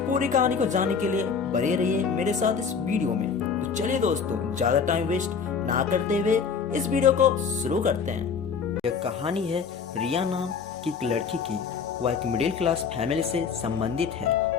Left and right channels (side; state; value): right; quieter; 6.0 dB